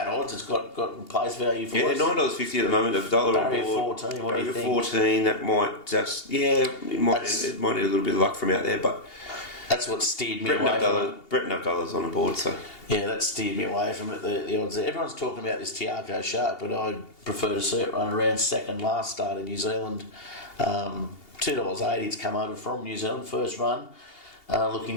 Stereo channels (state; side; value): late; right; 2.8 ms